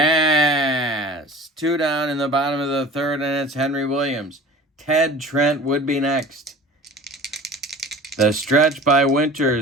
2 down in the bottom of the third, and it's Henry Williams. Ted Trent would be next. The stretch by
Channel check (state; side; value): normal; both; correlation 0.41